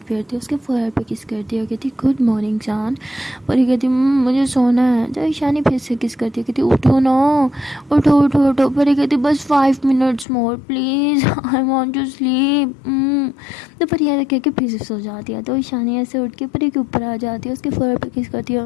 है, उसके फोरहेड पे किस करती है, कहती गुड मॉर्निंग जान। परी कहती मुझे सोना है। तो ईशानी फिर से किस करती है, कहती उठो ना, उठो उठो उठो। परी कहती बस 5 minutes more please, I want to sleep. तो परी ऐसा कह के फिर से सो जाती है। तो ईशानी ऐसे उठ के परी के ऊपर आ जाती है, उसके फोरहेड पे किस करती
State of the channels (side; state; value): right; drops out; at 10.2 s